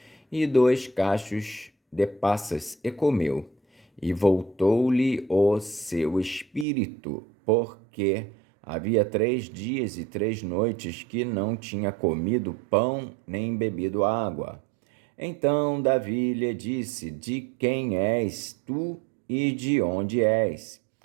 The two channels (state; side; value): drops out; left; at 6.7 s